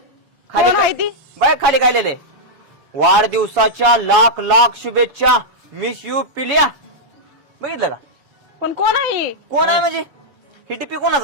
कोण आहे ती? बाय खाली काय लिहिलंय वाढदिवसाच्या लाख लाख शुभेच्छा मिस यू पिल्या बघितलं का पण कोण आहे? कोण आहे म्हणजे ही टिपी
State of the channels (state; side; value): late; left; 7.1 ms